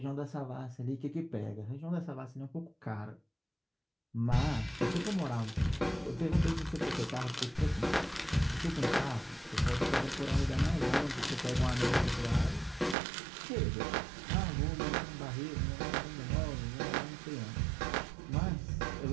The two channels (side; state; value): left; drops out; at 13.0 s